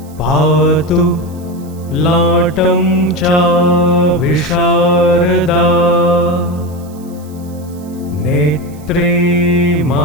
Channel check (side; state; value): right; noise; hiss, 26 dB below the sound